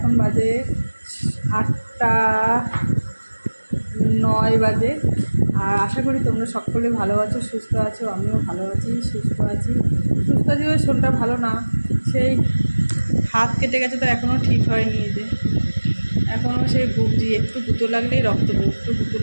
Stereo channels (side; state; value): both; inverted; correlation -1.00